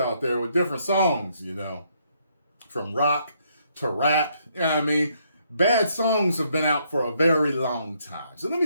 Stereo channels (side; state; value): both; inverted; correlation -0.72